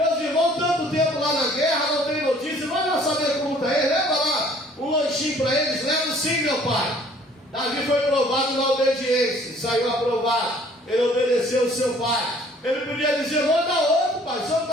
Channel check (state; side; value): normal; both; correlation 0.56